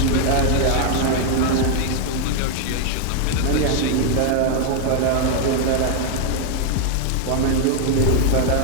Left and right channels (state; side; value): different; both; correlation 0.00